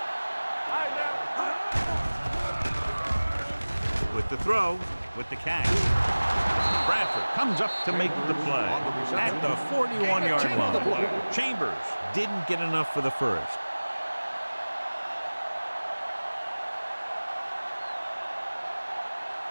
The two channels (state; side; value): inverted; both; correlation -1.00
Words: All right, now. With the throw, with the catch. Bradford comes up to make the play at the 41-yard line. Chambers didn't get enough for the first.